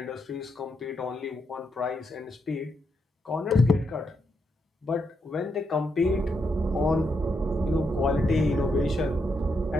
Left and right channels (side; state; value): both; normal; correlation 0.81